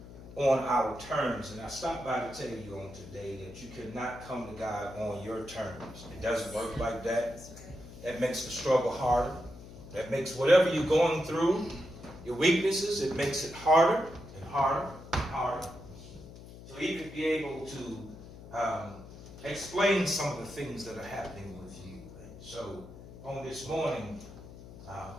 on our terms. And I stopped by to tell you on today that you cannot come to God on your terms. It doesn't work like that. That makes the struggle harder. That makes whatever you're going through, your weaknesses, it makes it harder and harder and harder. To even be able to explain some of the things that are happening with you. And so on this morning,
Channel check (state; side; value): noise; left; hum, 16 dB below the sound